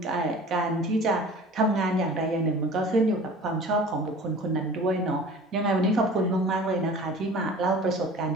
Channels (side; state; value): both; normal; correlation 0.43